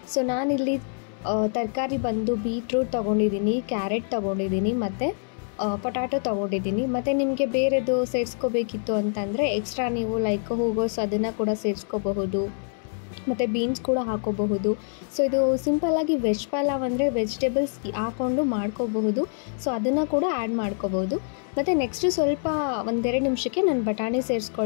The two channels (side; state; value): right; silent; 61 dB below the other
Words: ಸೊ ನಾನಿಲ್ಲಿ ತರಕಾರಿ ಬಂದು ಬೀಟ್ರೂಟ್ ತೊಗೊಂಡಿದ್ದೀನಿ, ಕ್ಯಾರೆಟ್ ತೊಗೊಂಡಿದ್ದೀನಿ ಮತ್ತು ಪೊಟ್ಯಾಟೊ ತೊಗೊಂಡಿದ್ದೀನಿ. ಮತ್ತು ನಿಮಗೆ ಬೇರೆದು ಸೇರಿಸ್ಕೋಬೇಕಿತ್ತು ಅಂತಂದರೆ ಎಕ್ಸ್ಟ್ರಾ ನೀವು ಲೈಕ್ ಹೂಗೋಸ್ ಅದನ್ನು ಕೂಡ ಸೇರಿಸ್ಕೋಬಹುದು, ಮತ್ತು ಬೀನ್ಸ್ ಕೂಡ ಹಾಕೋಬಹುದು. ಸೊ ಇದು ಸಿಂಪಲ್ಲಾಗಿ ವೆಜ್ ಪಲಾವ್ ಅಂದರೆ ವೆಜಿಟೇಬಲ್ಸ್ ಹಾಕ್ಕೊಂಡು ಮಾಡ್ಕೋಬಹುದು. ಸೊ ಅದನ್ನು ಕೂಡ ಆ್ಯಡ್ ಮಾಡ್ಕೋಬೋದು. ಮತ್ತು ನೆಕ್ಸ್ಟು ಸ್ವಲ್ಪ ಒಂದೆರಡು ನಿಮಿಷಕ್ಕೆ ನಾನು ಬಟಾಣಿ